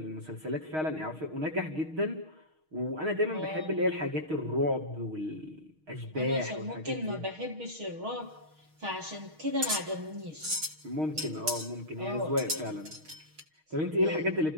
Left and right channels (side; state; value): left; late; 6.4 ms